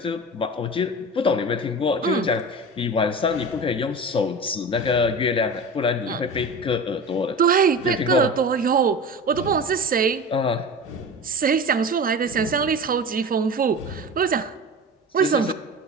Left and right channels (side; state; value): both; normal; correlation 0.31